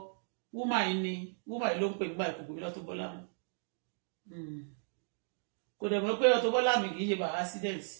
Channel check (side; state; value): left; silent; digital silence